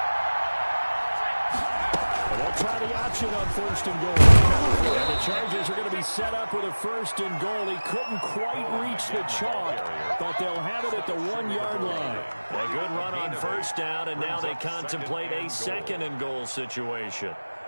And they'll try the option on first and goal. And the Chargers are going to be set up with a first and goal. He couldn't quite reach the chalk, but they'll have it at the 1-yard line. A good run on first down, and now they contemplate a second and goal situation.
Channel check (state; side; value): inverted; both; correlation -1.00